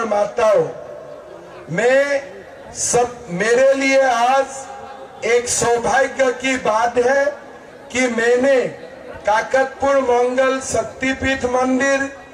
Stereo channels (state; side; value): identical; both; correlation 1.00